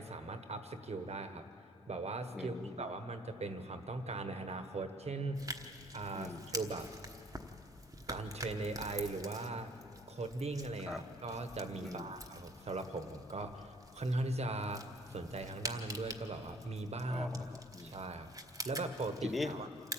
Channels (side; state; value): both; normal; correlation 0.56